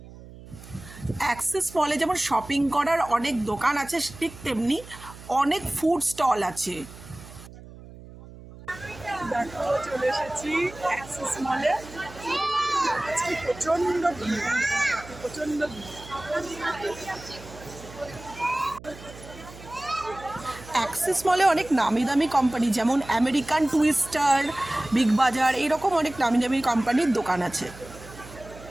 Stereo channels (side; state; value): right; noise; hum, 17 dB below the sound